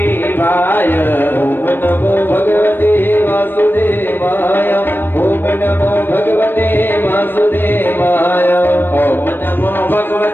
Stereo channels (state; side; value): late; right; 0.096 ms